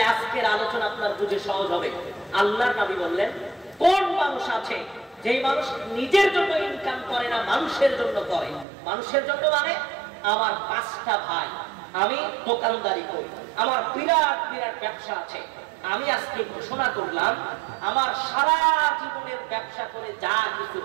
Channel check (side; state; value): left; drops out; at 8.7 s